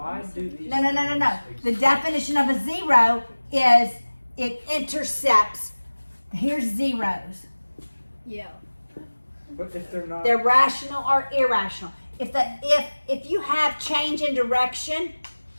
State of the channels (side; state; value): both; inverted; correlation -1.00